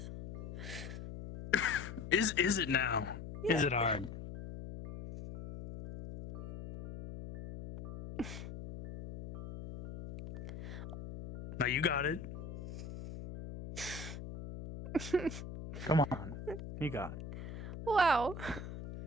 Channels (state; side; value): noise; left; hum, 9 dB below the sound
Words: Is it now? Is it hard? Now you got it. Come on. You got it. Wow.